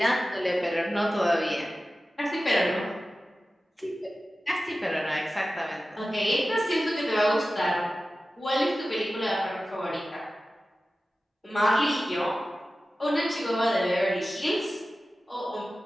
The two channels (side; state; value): both; normal; correlation 0.95